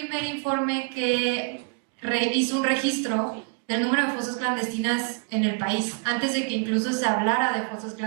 informe que hizo un registro del número de fosas clandestinas en el país, antes de que incluso se hablara de fosas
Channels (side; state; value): left; quieter; 38.5 dB